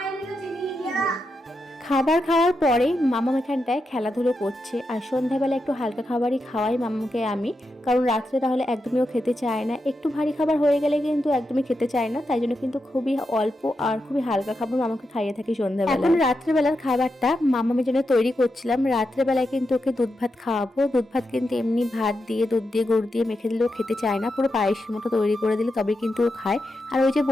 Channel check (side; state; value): both; normal; correlation 0.87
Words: নিয়ে চিনি নিয়ে। খাবার খাওয়ার পরে মামাম এখানটায় খেলাধুলো করছে, আর সন্ধ্যাবেলা একটু হালকা খাবারই খাওয়াই মামাকে আমি, কারণ রাত্রে তাহলে একদমই ও খেতে চায় না। একটু ভারী খাবার হয়ে গেলে কিন্তু একদমই খেতে চায় না, তাই জন্য কিন্তু খুবই অল্প আর খুবই হালকা খাবার মামাকে খাইয়ে থাকি সন্ধ্যাবেলা। এখন রাত্রেবেলার খাবারটা মামামের জন্য তৈরি করছিলাম। রাত্রেবেলায় কিন্তু ওকে দুধ ভাত খাওয়াবো। দুধ ভাত কিন্তু এমনি ভাত দিয়ে দুধ দিয়ে গুড় দিয়ে মেখে দিলেও খেতে চায় না, পুরো পায়েসের মতো তৈরি করে দিলে তবে কিন্তু ও খায়। আর ওই যে